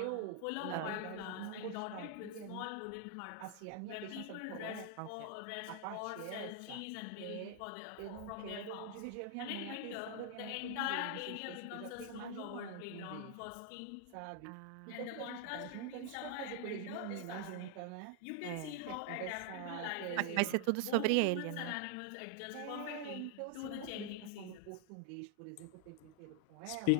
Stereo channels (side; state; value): both; different; correlation 0.00